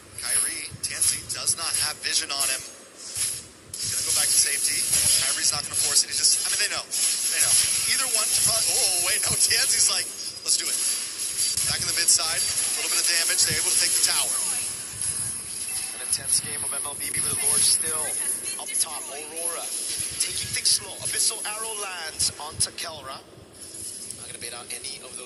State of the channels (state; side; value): identical; both; correlation 1.00